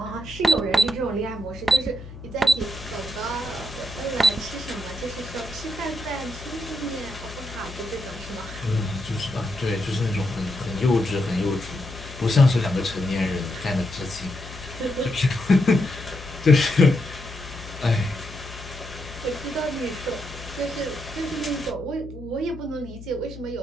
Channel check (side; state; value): left; noise; hum, 14 dB below the sound